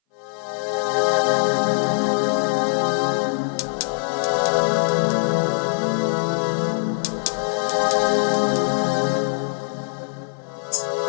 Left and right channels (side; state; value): right; silent; 60 dB below the other